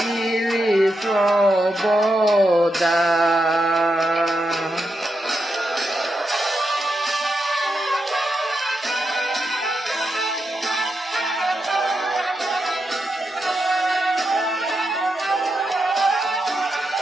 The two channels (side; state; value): both; normal; correlation 0.85